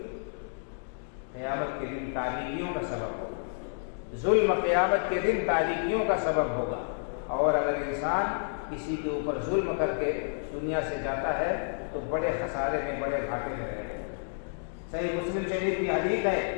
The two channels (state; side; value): silent; right; digital silence